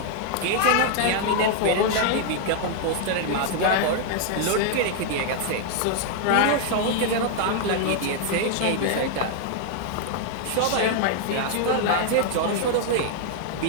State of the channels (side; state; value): both; different; correlation 0.00